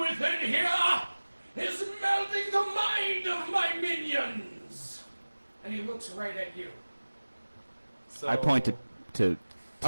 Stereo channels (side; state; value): both; inverted; correlation -1.00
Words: within here is melting the mind of my minions? And he looks right at you. So, I point to